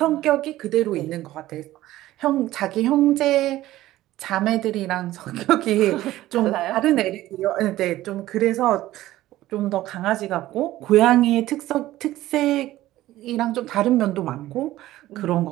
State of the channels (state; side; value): quieter; left; 15.4 dB